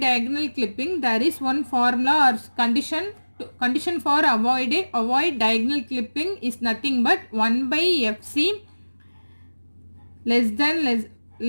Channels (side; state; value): both; inverted; correlation -1.00